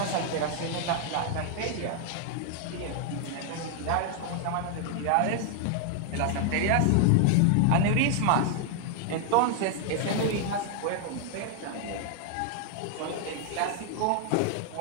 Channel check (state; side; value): different; both; correlation 0.00